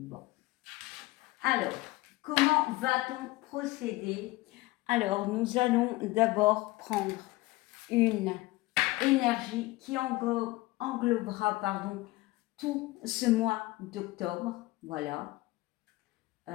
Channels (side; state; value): right; quieter; 19.9 dB